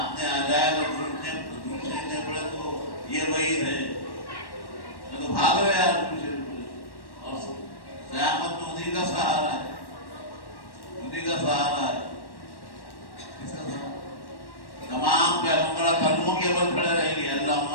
آ جائے گا درود شریف نہیں پڑھے تو یہ وعید ہے. میں تو بھاگ رہے یار درود شریف پڑھے. اور قیامت میں انہیں کا سہارا ہے. انہیں کا سہارا ہے. کس کا سہارا؟ تمام پیغمبر کلموں کے اوپر کھڑے رہیں گے. اللہم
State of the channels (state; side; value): late; right; 1.1 ms